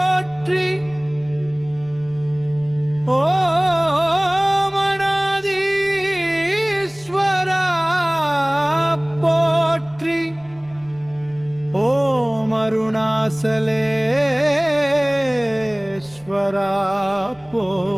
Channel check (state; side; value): noise; right; rumble, 28 dB below the sound